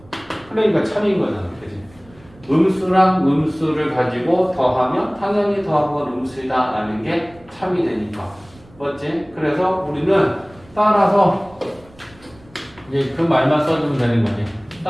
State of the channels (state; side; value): noise; right; rumble, 26 dB below the sound